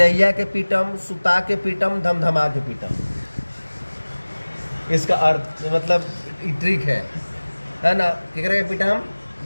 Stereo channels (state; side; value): inverted; both; correlation -1.00